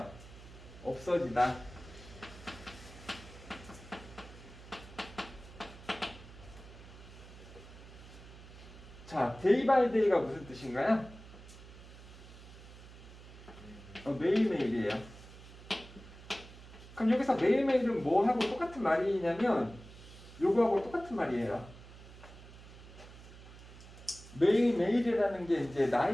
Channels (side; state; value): right; noise; hum, 17 dB below the sound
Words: 없어지다. 자, day by day가 무슨 뜻인가요? 매일매일이에요. 그럼 여기서 매일매일은 뭐하고 똑같은 말이냐면 요거하고 똑같은 말이에요. 매일매일이라는 게 이제